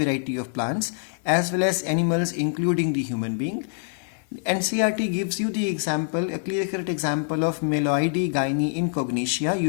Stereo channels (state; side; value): silent; right; digital silence